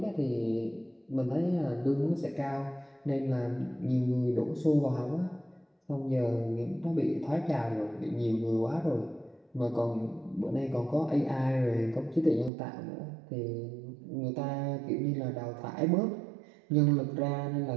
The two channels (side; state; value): left; drops out; at 12.5 s